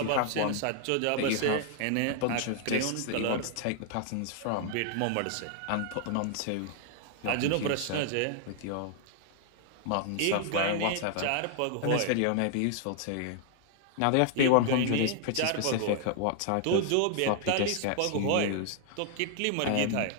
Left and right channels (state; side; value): different; both; correlation 0.00